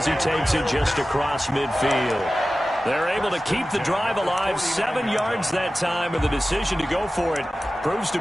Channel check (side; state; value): both; normal; correlation 0.95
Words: he takes it just across midfield. They're able to keep the drive alive. 7 yards that time, and the decision to go for it proves to